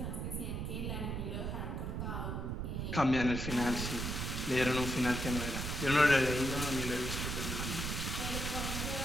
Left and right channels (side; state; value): right; noise; rumble, 3 dB below the sound